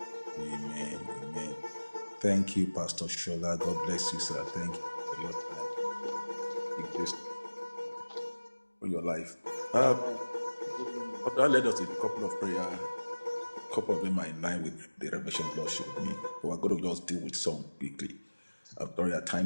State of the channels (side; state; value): both; inverted; correlation -1.00